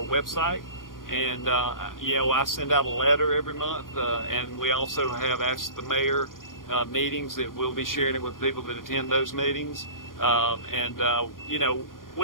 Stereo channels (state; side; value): late; right; 0.90 ms